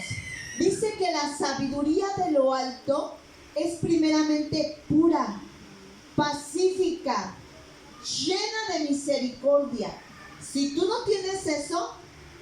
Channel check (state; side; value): identical; both; correlation 1.00